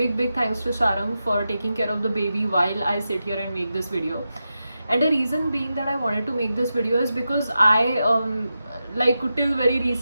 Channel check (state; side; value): inverted; both; correlation -0.90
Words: thanks to Sharang for taking care of the baby while I sit here and make this video. And the reason being that I wanted to make this video is because I like till very